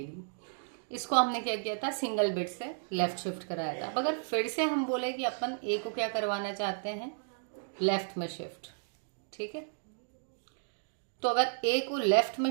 ली, इसको हमने क्या किया था, सिंगल बिट से लेफ्ट शिफ्ट कराया था। अब अगर फिर से हम बोले कि अपन ए को क्या करवाना चाहते हैं, लेफ्ट में शिफ्ट, ठीक है। तो अगर ए को लेफ्ट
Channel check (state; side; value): silent; left; digital silence